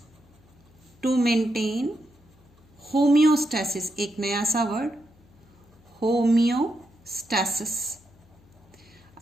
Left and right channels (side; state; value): left; noise; hum, 28 dB below the sound